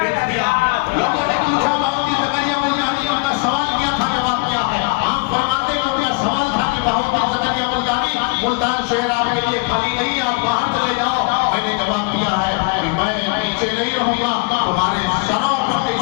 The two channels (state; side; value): quieter; right; 29.3 dB